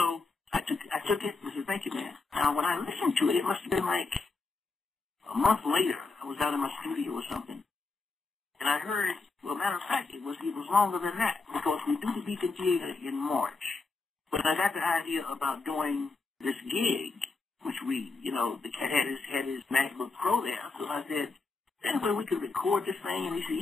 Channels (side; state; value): right; quieter; 3.9 dB